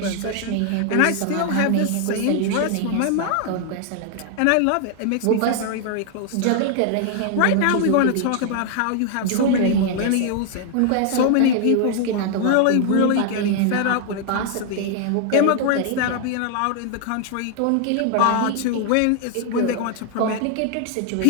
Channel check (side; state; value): both; different; correlation 0.00